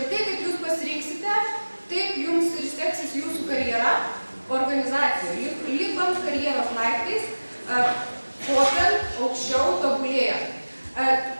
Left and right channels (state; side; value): inverted; both; correlation -1.00